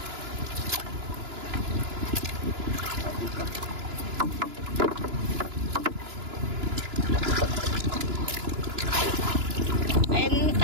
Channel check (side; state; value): left; late; 2.9 ms